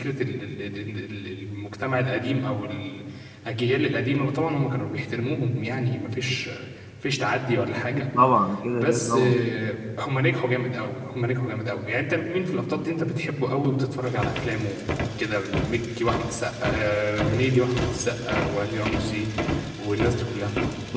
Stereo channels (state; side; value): identical; both; correlation 1.00